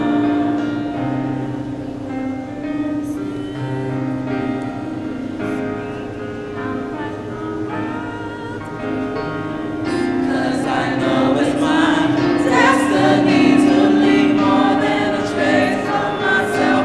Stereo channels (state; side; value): identical; both; correlation 1.00